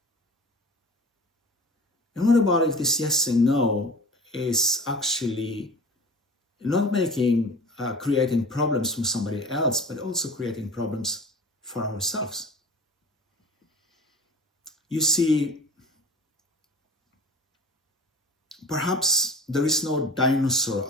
And what about if this yes and no is actually not creating problems from somebody else, but also creating problems for ourselves? You see, perhaps there is no dinosaur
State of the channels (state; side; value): normal; both; correlation 0.39